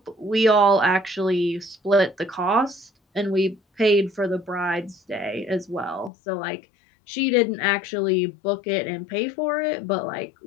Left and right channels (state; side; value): drops out; right; at 6.1 s